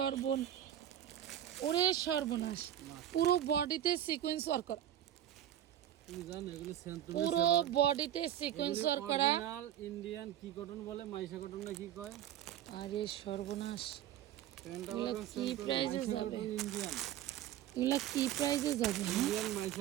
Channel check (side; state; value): left; quieter; 11.6 dB